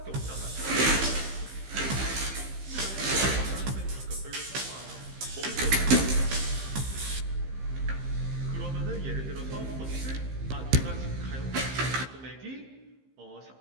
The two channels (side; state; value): left; late; 15 ms